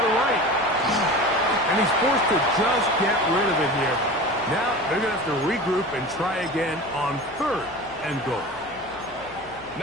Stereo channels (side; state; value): left; noise; hum, 23 dB below the sound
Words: right. And he's forced to just get rid of it here. Now they're going to have to regroup and try again on 3rd and goal.